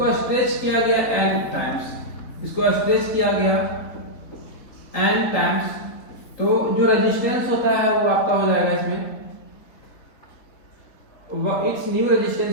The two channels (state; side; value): late; right; 4.0 ms